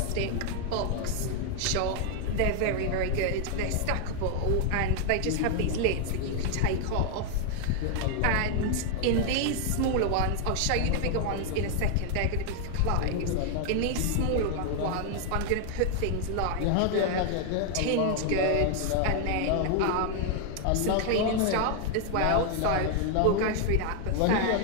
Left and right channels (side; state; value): both; different; correlation 0.00